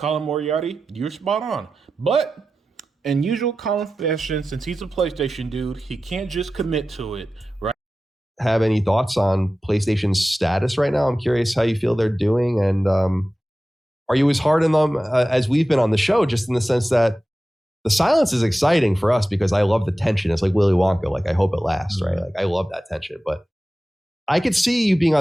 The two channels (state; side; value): normal; both; correlation 0.94